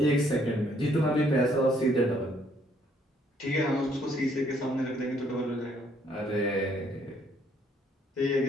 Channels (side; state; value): both; normal; correlation 0.66